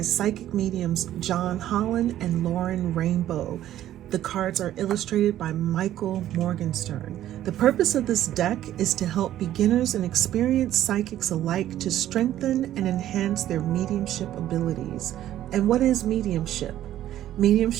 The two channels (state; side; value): quieter; left; 12.6 dB